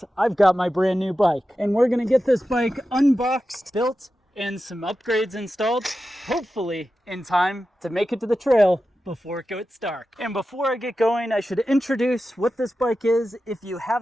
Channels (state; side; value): normal; both; correlation 0.92